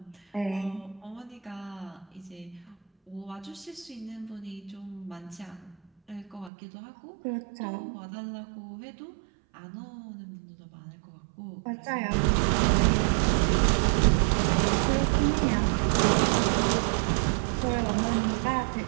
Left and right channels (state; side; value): drops out; left; at 6.5 s